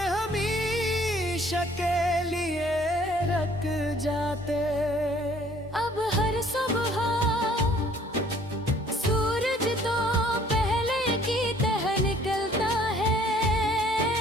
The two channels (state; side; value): normal; both; correlation 0.58